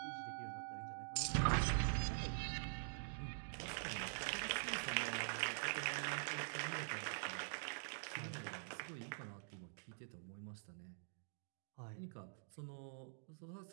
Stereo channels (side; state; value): left; silent; digital silence